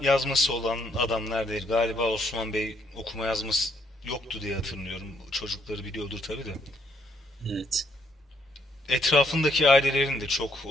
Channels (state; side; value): normal; both; correlation 0.72